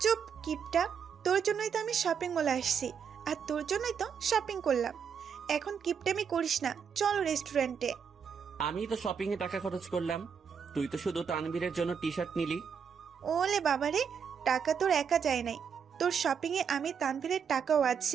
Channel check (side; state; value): left; quieter; 6.9 dB